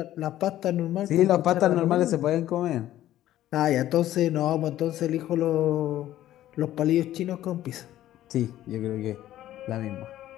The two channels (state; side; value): quieter; right; 13.4 dB